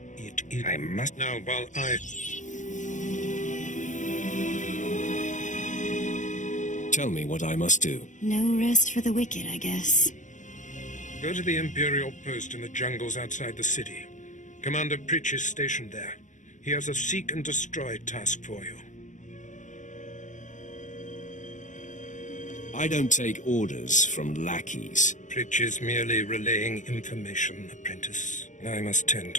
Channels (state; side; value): late; right; 0.36 ms